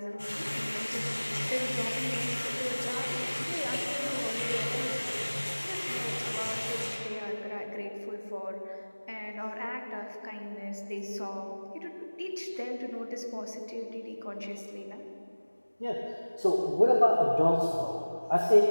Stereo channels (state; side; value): inverted; both; correlation -1.00